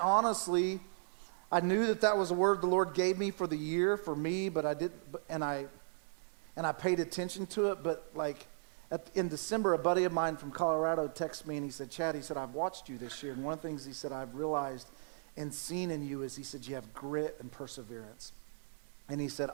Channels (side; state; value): left; silent; digital silence